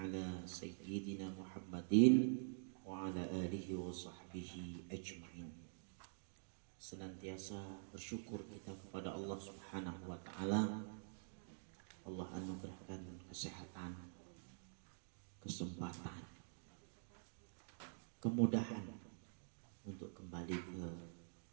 sayyidina Muhammadin wa ala alihi wa sahbihi ajma'in. Senantiasa bersyukur kita kepada Allah Subhanahu wa taala. Allah anugerahkan kesehatan, kesempatan, kemudahan untuk kembali ke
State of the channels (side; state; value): left; silent; digital silence